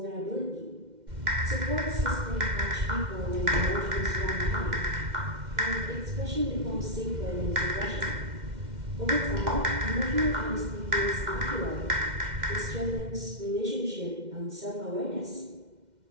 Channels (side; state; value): left; late; 2.1 ms